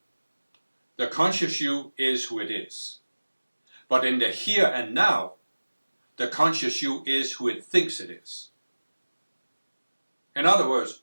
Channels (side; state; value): both; inverted; correlation -1.00